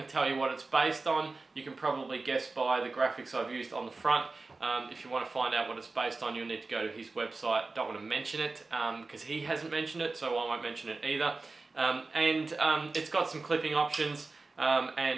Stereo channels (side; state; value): left; quieter; 3.6 dB